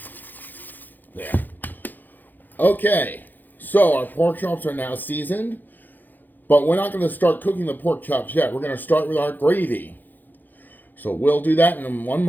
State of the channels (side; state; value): right; late; 0.087 ms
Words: there. Okay, so our pork chops are now seasoned, but we're not going to start cooking the pork chops yet. We're going to start with our gravy. So we'll do that in one